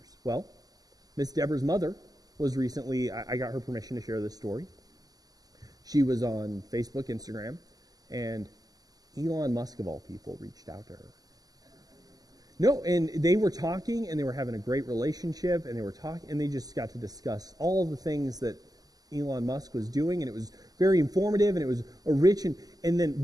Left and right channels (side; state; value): left; late; 0.18 ms